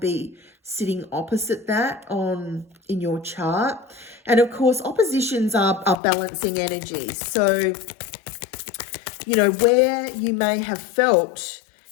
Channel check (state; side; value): drops out; right; at 6.0 s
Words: sitting opposite that in your chart. And of course, oppositions are balancing energies. So, where you may have felt